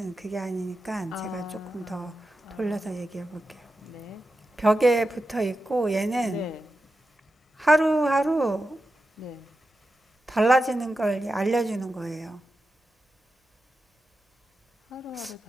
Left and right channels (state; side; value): normal; both; correlation 0.91